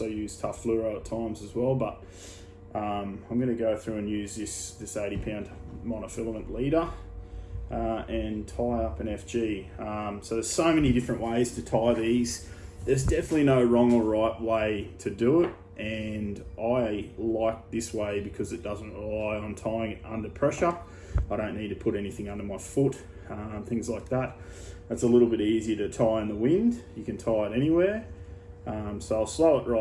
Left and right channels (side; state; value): both; identical; correlation 1.00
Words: use tough fluoro at times as well, but I'm going to go through and use this 80-pound monofilament leader and tie up an FG. So there's so many different ways to tie these. There's definitely no wrong or right way to do it, and I like this way because it doesn't rely on tying it under pressure. I don't need to put anything under my foot, things like that. It's a little bit easier to tie in the wind. You can tie it anywhere. So I'll slow it